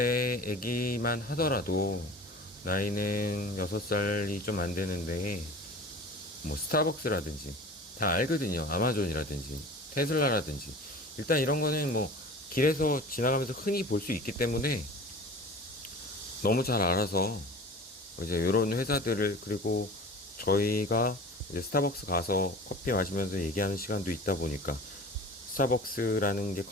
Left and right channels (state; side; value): normal; both; correlation 0.39